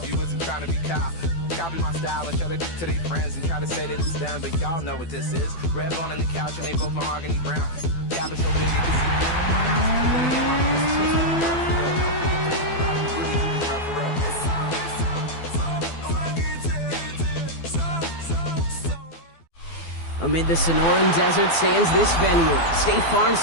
you wasn't trying to be Kyle. Copy my style and show it to their friends and try to say that it's them, but y'all know what this is. Red bone on the couch and they both mahogany brown. Gap is so big it can see my house. Then again, my business twisted for real. Don't forget to really do this for real. Amid the Sonoran Desert stands this venue, State Farm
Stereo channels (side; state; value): right; late; 12 ms